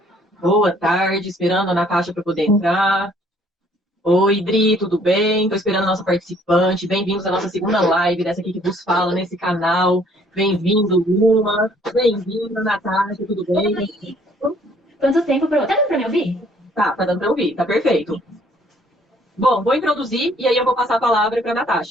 Boa tarde, esperando a Natasha para poder entrar. Oi, Dri, tudo bem? Estou esperando a nossa participante. Bem-vindos à nossa segunda live dessa aqui que vos fala nesse canal. Bem-vindo, Luma. Bem-vinda, Natasha, tudo bem? Oi. Quanto tempo pra... Tá dando pra me ouvir? Tá dando para ouvir, tá perfeito. Bom, vou introduzir e aí eu vou passar a palavra para a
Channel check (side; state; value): both; normal; correlation 0.61